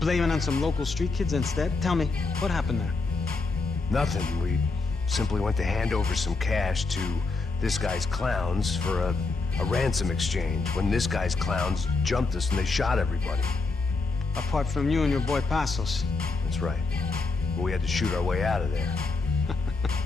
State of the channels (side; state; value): right; quieter; 3.8 dB